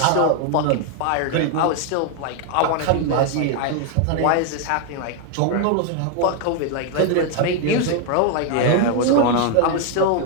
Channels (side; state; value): both; different; correlation 0.00